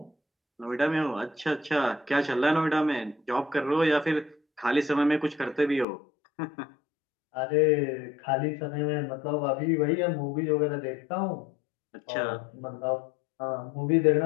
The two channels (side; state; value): right; drops out; at 5.9 s